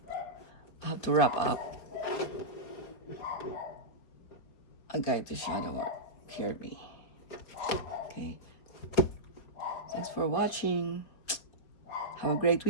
I have to wrap up. A guide to shadow work. Kirby. Okay. Thanks for watching. Have a great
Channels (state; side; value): late; right; 5.1 ms